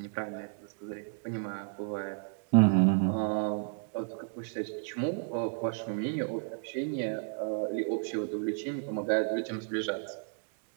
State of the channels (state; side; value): silent; left; 56 dB below the other